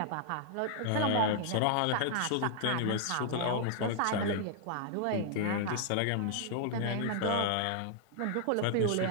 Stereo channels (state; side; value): different; both; correlation -0.01